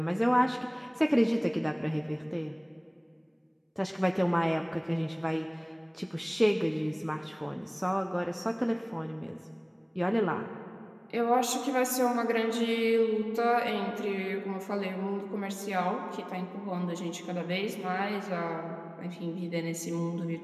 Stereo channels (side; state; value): both; identical; correlation 1.00